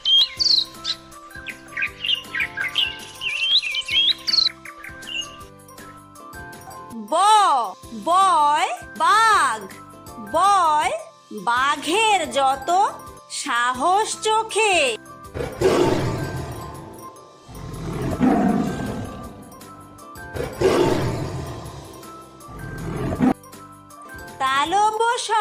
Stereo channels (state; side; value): identical; both; correlation 1.00